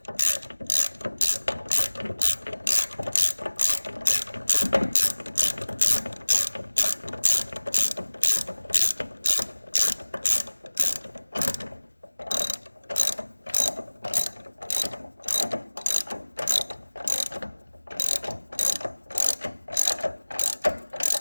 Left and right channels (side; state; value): both; inverted; correlation -1.00